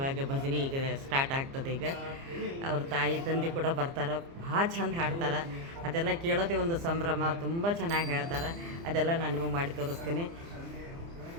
ಭಜನೆ ಈಗ ಸ್ಟಾರ್ಟ್ ಆಗ್ತದೆ. ಈಗ ಅವ್ರ ತಾಯಿ ತಂದೆ ಕೂಡ ಬರ್ತಾರೆ. ಭಾಳ ಚಂದ ಹಾಡ್ತಾರೆ. ಅದೆಲ್ಲ ಕೇಳೋದೇ ಒಂದು ಸಂಭ್ರಮ. ತುಂಬ ಚೆನ್ನಾಗಿ ಹೇಳ್ತಾರೆ. ಅದೆಲ್ಲ ನಾನು ನಿಮಗೆ ಮಾಡಿ ತೋರಿಸ್ತೀನಿ.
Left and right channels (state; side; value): late; left; 30 ms